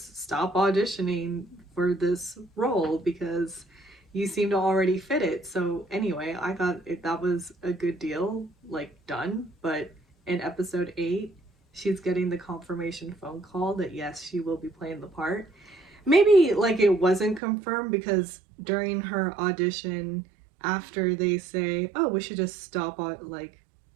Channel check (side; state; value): left; drops out; at 17.4 s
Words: stop auditioning for this role because you seem to already fit it. So anyway, I thought that was a good deal, like, done. But in episode 8, she's getting the confirmation phone call that yes, she will be playing the part. Maybe, like, it wasn't confirmed because during her audition, after they say, oh, we should just stop like